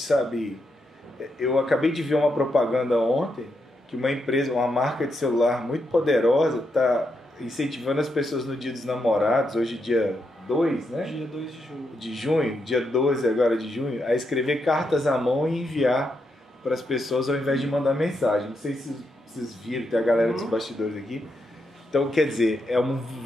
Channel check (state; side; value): normal; both; correlation 0.82